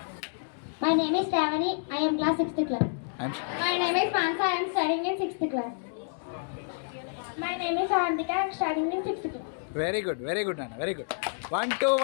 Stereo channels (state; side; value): silent; right; digital silence